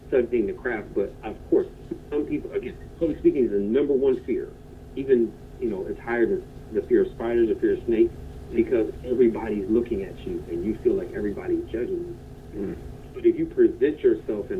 studying the craft. But of course, some people, again, public speaking is the number one fear. Even, you know, it's higher than the fear of spiders, the fear of snakes, because everybody's looking at you and you feel like everybody's judging you. But if you present yourself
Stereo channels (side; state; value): both; identical; correlation 1.00